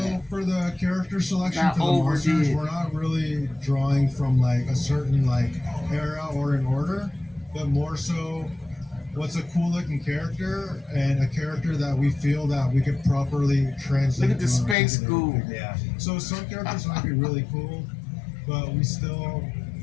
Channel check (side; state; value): right; drops out; at 14.8 s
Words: for the character selection Not for the monsters, overdid. we're not really drawing from like a certain like era or an order, but more so what's a cool looking character and a character that we feel that we could properly translate. Look at the to an space articulated ghoul. figure. Yeah. So some characters might be really cool, but we still